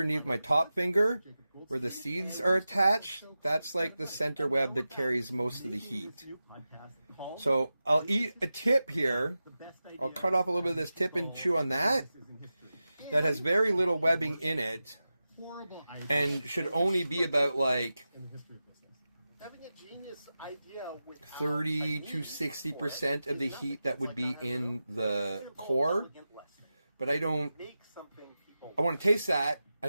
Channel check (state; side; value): inverted; both; correlation -0.93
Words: my top finger, where the seeds are attached, that's like the center web that carries most of the heat. So I'll eat a tip here. I'll cut off a little bit of this tip and chew on that. That has very little webbing in it and should only be about like 30 to 60% of the heat that would be in the core. But I want to taste that.